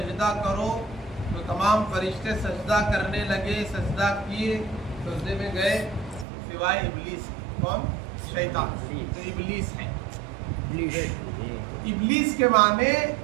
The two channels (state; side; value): drops out; left; at 6.2 s